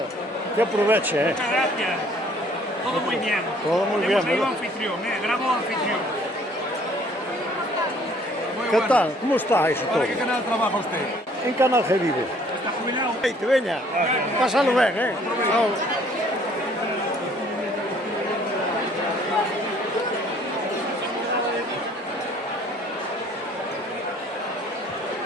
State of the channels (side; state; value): both; normal; correlation 0.59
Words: que aproveche, Muchas gracias. Todo muy bien. Todo muy bien, Hemos traído ¿verdad? anfitrión, bravo anfitrión. Muy ¿Qué bueno. tal? ¿Cómo está eso todo? ¿Para qué canal trabaja usted? En Canal G vive. ¿Está jubilado? Hey, te veña, pásalo ben, Chao.